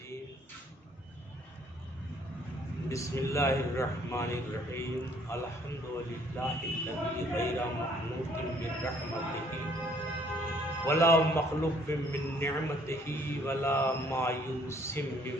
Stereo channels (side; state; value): both; normal; correlation 0.62